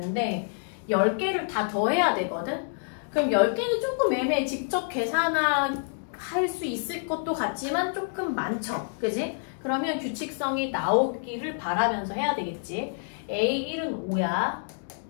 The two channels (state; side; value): silent; right; digital silence